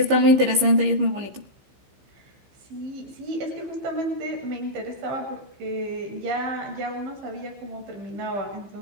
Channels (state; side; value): late; left; 15 ms